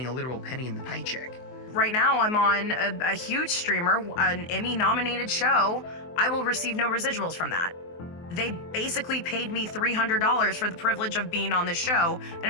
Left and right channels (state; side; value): late; right; 23 ms